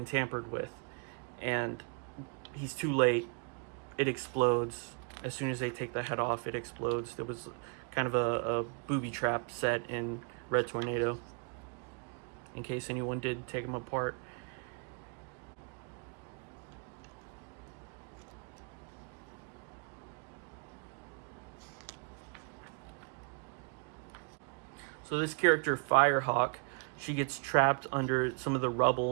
tampered with. And he's too late. It explodes. As soon as they take the head off, it explodes. There was kind of a booby trap set in Red Tornado, in case anyone did take him apart. So this character, Firehawk, she gets trapped under some of the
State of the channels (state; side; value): quieter; left; 36.9 dB